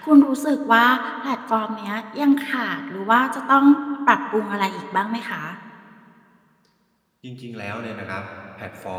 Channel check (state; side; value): identical; both; correlation 1.00